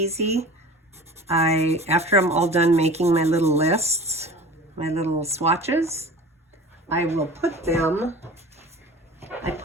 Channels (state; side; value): normal; both; correlation 0.39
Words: after I'm all done making my little lists, my little swatches, I will put them